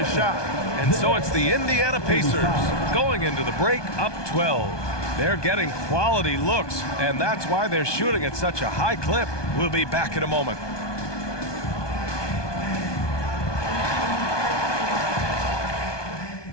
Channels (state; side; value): late; right; 1.2 ms